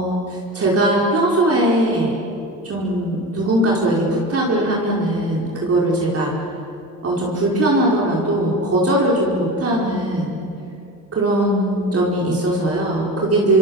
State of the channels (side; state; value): both; normal; correlation 0.29